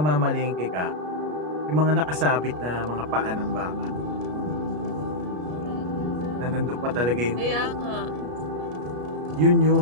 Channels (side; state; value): left; late; 33 ms